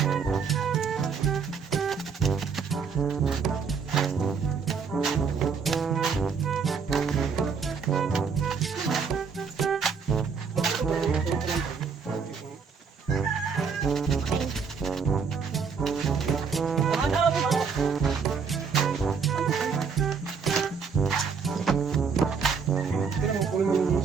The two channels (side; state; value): left; quieter; 5.8 dB